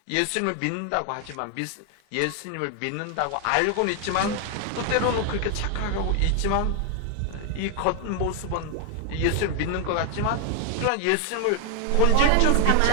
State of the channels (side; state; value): both; different; correlation 0.00